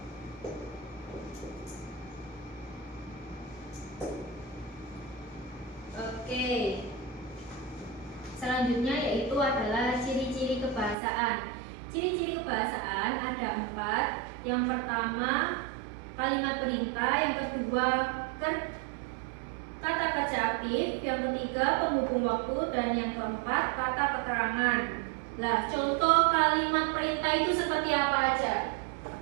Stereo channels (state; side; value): drops out; left; at 11.0 s